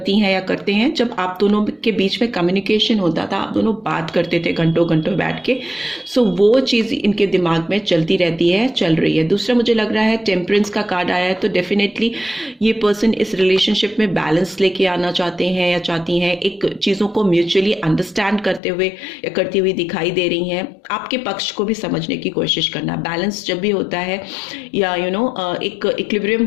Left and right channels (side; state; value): right; drops out; at 18.6 s